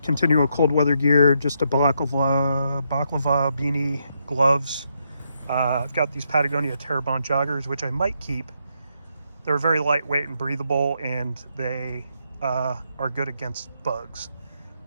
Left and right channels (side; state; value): both; inverted; correlation -0.78